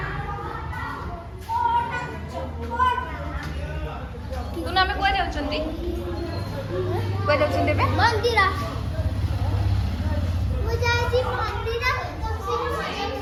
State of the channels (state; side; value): identical; both; correlation 1.00